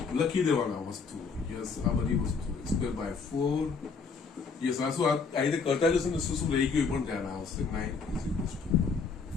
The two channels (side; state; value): right; quieter; 5.1 dB